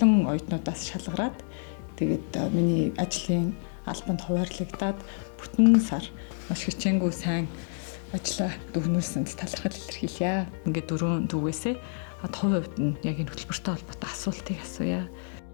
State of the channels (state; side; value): silent; right; 57 dB below the other